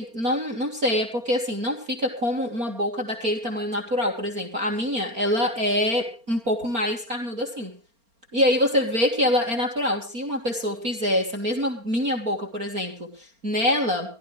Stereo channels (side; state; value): left; late; 4.3 ms